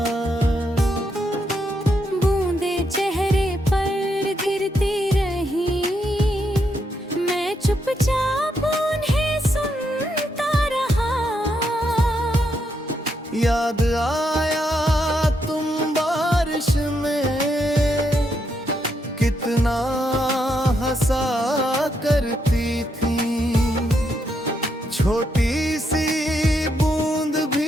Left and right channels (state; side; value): normal; both; correlation 0.79